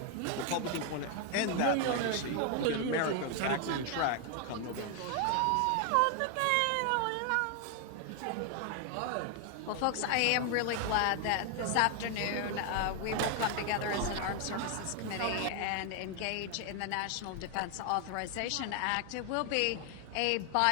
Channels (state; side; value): different; both; correlation 0.01